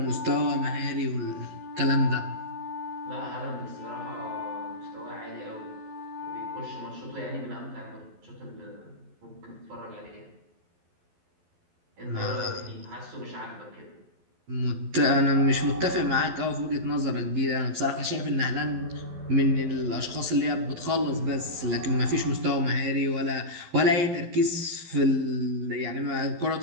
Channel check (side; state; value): left; late; 12 ms